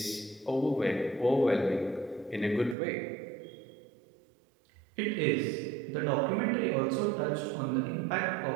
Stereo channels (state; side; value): drops out; left; at 2.8 s